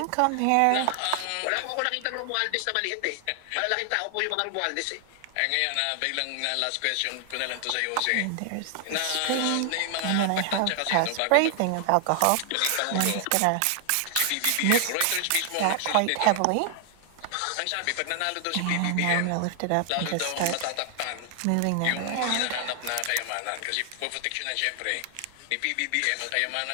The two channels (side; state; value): both; different; correlation 0.00